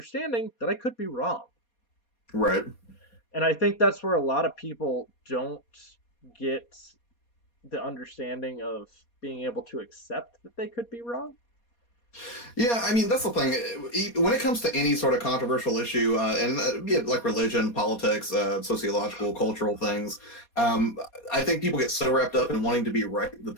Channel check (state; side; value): late; right; 4.2 ms